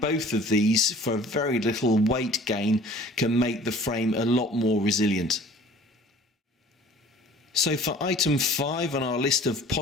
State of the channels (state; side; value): normal; both; correlation 0.48